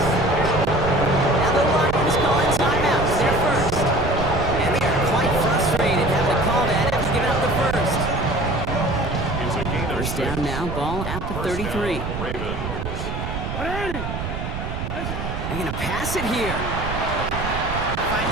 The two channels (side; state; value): right; noise; rumble, 5 dB below the sound